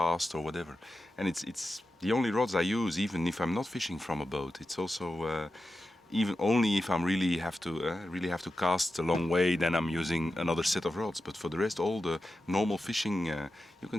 or whatever. And it's the only rods I use, even if I'm not fishing from a boat. It's also even only if I really have to cast a long way, then I'm using another set of rods. But for the rest, all the normal fishing, you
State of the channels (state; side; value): normal; both; correlation 0.91